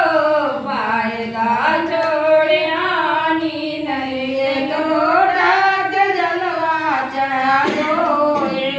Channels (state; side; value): identical; both; correlation 1.00